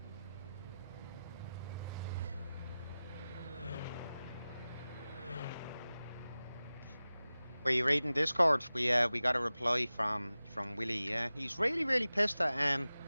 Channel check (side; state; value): both; inverted; correlation -0.96